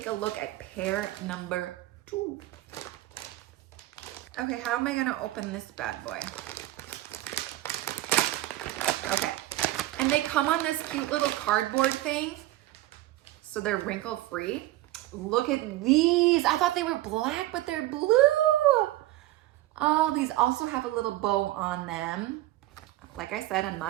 a look at pair number 2. Okay, how am I gonna open this bad boy? Okay, and they come on this cute little cardboard thing, so they're wrinkle free. Look at these. I thought they were black, but they're blue. Oh, these also have a little bow on them. Like I said, I'm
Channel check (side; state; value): left; quieter; 16.2 dB